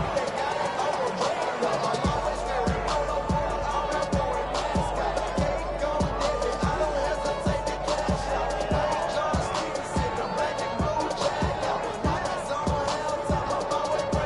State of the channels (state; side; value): identical; both; correlation 1.00